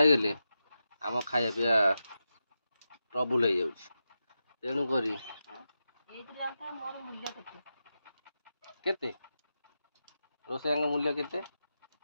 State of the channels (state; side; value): inverted; both; correlation -0.89